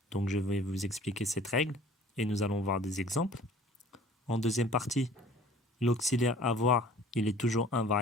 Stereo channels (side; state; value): both; normal; correlation 0.49